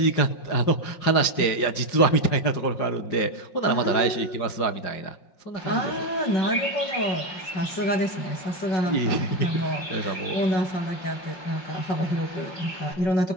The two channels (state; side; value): late; right; 5.5 ms